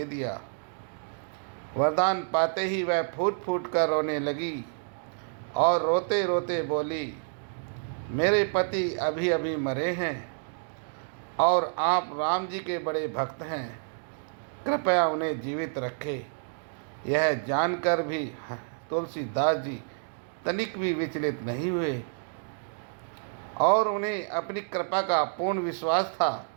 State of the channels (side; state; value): left; silent; digital silence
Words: दिया। वरदान पाते ही वह फूट फूट कर रोने लगी और रोते रोते बोली, मेरे पति अभी अभी मरे हैं और आप राम जी के बड़े भक्त हैं, कृपया उन्हें जीवित रखें। यह जानकर भी तुलसीदास जी तनिक भी विचलित नहीं हुए और उन्हें अपनी कृपा का पूर्ण विश्वास था,